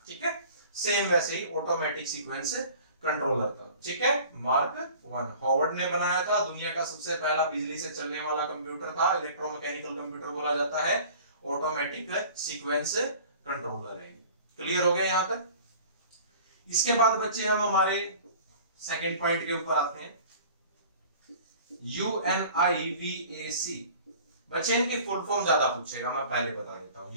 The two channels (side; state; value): both; inverted; correlation -0.45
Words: ठीक है, सेम वैसे ही ऑटोमेटिक सीक्वेंस कंट्रोलर था। ठीक है, मार्क 1 हॉवर्ड ने बनाया था, दुनिया का सबसे पहला बिजली से चलने वाला कंप्यूटर था, इलेक्ट्रोमैकेनिकल कंप्यूटर बोला जाता है, ऑटोमेटिक सीक्वेंस कंट्रोलर है। क्लियर हो गया यहां तक? इसके बाद बच्चे हम हमारे सेकंड पॉइंट के ऊपर आते हैं, UNIVAC। बच्चे इनकी फुल फॉर्म ज्यादा पूछेगा, मैं पहले बता देता हूं।